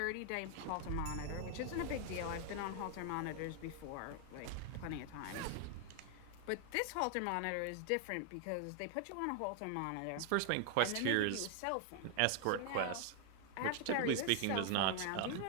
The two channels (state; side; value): different; both; correlation 0.00